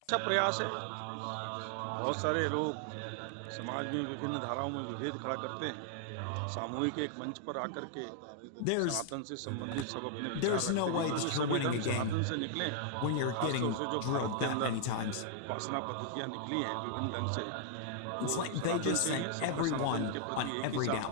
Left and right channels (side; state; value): both; different; correlation -0.01